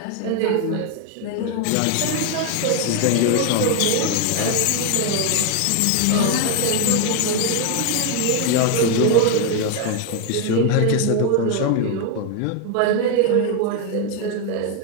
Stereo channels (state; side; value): different; both; correlation 0.01